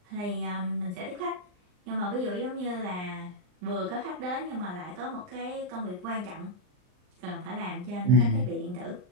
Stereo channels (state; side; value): late; left; 39 ms